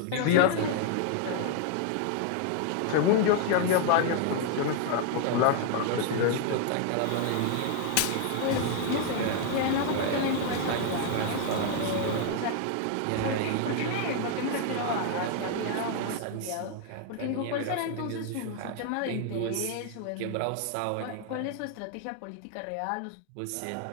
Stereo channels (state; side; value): different; both; correlation 0.00